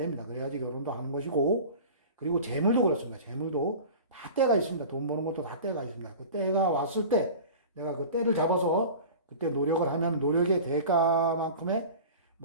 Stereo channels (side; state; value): both; inverted; correlation -0.37